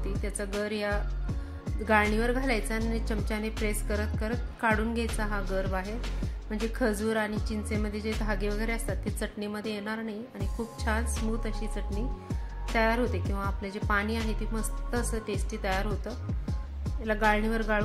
त्याचा गर या गाळणीवर घालायचा आणि चमच्याने प्रेस करत करत काढून घ्यायचा हा गर बाहेर. म्हणजे खजूर आणि चिंचेमध्ये जे धागे वगैरे असतात ते चटणीमध्ये येणार नाही आणि खूप छान स्मूथ अशी चटणी तयार होते किंवा आपले जे पाणी आहे ते मस्त असं टेस्टी तयार होतं. याला गाळणीवर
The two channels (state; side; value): identical; both; correlation 1.00